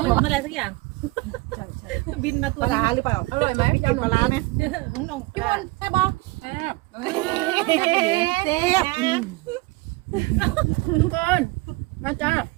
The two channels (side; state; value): left; quieter; 22.8 dB